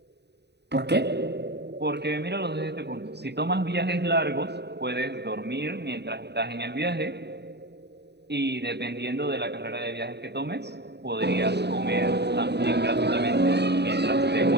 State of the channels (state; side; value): late; left; 0.49 ms